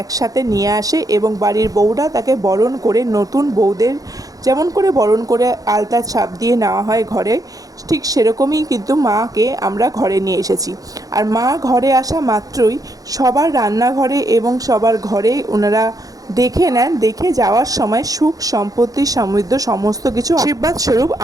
একসাথে নিয়ে আসে এবং বাড়ির বউরা তাকে বরণ করে, নতুন বউদের যেমন করে বরণ করে আলতা ছাপ দিয়ে নেওয়া হয় ঘরে, ঠিক সেরকমই কিন্তু মাকে আমরা ঘরে নিয়ে এসেছি। আর মা ঘরে আসা মাত্রই সবার রান্নাঘরে এবং সবার ঘরে ওনারা দেখে নেন, দেখে যাওয়ার সময় সুখ সম্পত্তি সমৃদ্ধ সমস্ত কিছু আশীর্বাদ স্বরূপ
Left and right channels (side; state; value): left; late; 0.17 ms